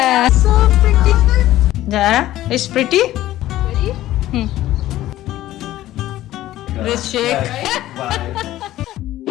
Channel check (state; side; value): quieter; right; 14.6 dB